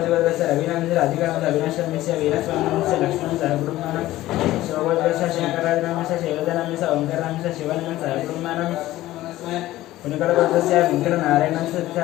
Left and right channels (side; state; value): right; quieter; 15.8 dB